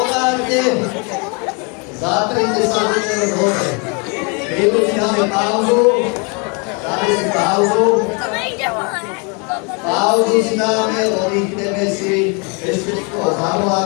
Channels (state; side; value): quieter; right; 33.5 dB